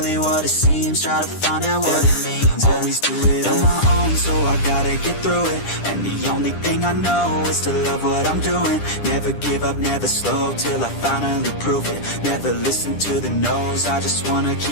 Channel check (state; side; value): late; right; 10 ms